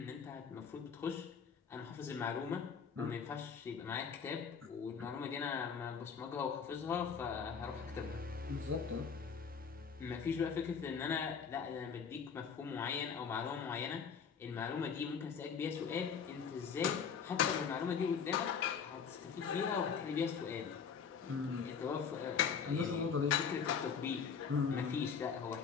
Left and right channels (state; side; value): quieter; right; 6.5 dB